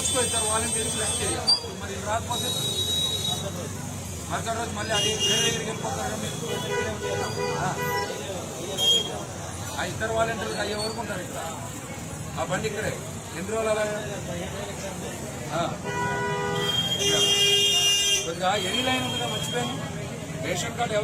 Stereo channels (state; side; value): identical; both; correlation 1.00